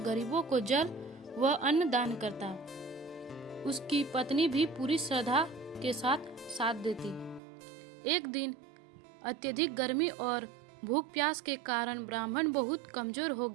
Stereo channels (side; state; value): left; drops out; at 7.4 s